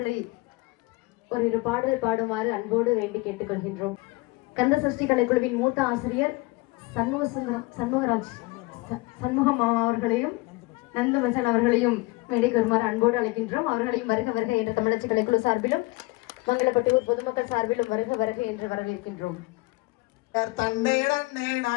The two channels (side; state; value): right; quieter; 23.3 dB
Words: ஒரு பாடல் பாடுமாறு அன்போடு வேண்டி கேட்டுக்கொள்கின்றோம். கந்த சஷ்டி கலைக்குழுவின் மூத்த ஆசிரியர் சண்முகம் அவர்களையும் நந்துமசன் அவர்களையும் மேடைக்கு வருமாறு அன்போடு அழைக்கின்றோம். அவர்களையும் வருக வருக என்று தமிழச்சி கலைக்குழு சார்பிலும் மங்களப்பட்டியூர் பொதுமக்கள் சார்பிலும் வருக வருக என்று வரவேற்கின்றோம்.